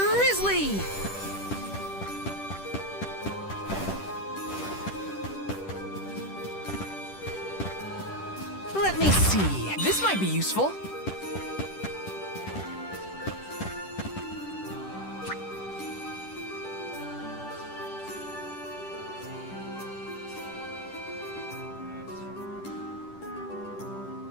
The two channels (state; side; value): late; right; 10 ms